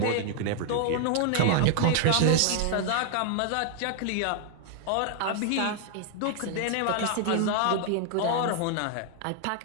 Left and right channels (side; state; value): both; different; correlation 0.00